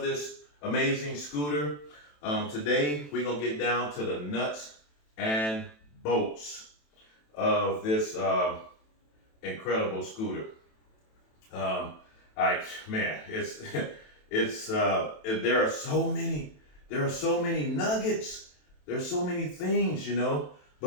this amazing scooter. Today we're gonna get down to the nuts and bolts of this incredible scooter. Man, there are so many nuggets. There's so many things, you know.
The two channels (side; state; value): right; late; 27 ms